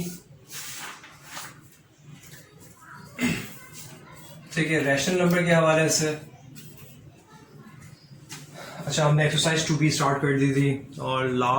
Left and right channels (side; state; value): both; identical; correlation 1.00